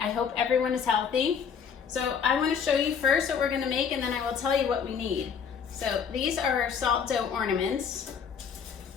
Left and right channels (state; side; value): quieter; right; 6.9 dB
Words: I hope everyone is healthy. So I want to show you first what we're going to make, and then I will tell you what we need. So these are our salt dough ornaments.